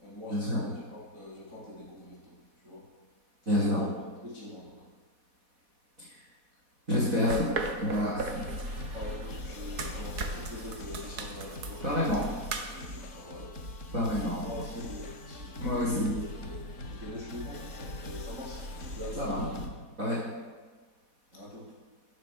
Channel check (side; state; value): left; late; 4.1 ms